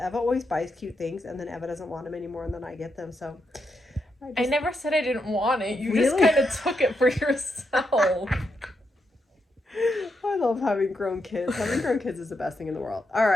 always buys cute things, and then Eva doesn't want them anymore, and then I get them, so. I never said I didn't want it. You Really? just kind of took it for yourself. I love having grown kids. Having grown kids is the best thing in the world. All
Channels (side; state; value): both; normal; correlation 0.82